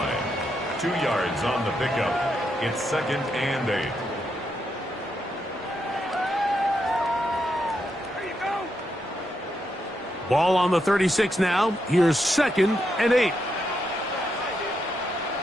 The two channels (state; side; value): normal; both; correlation 0.81